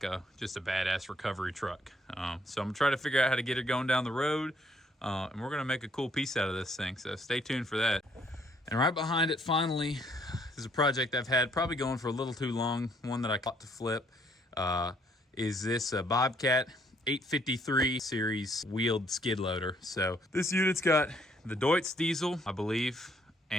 just a badass recovery truck. So I'm gonna try to figure out how to get it going down the road, and we're gonna make a cool piece out of this thing. So stay tuned for that. And right behind it, finally, is a project I've had probably going for a little too long. One that I got to flip is this Bobcat 853 series wheeled skid loader. So this unit's got the Deutz diesel, I believe,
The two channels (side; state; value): both; normal; correlation 0.66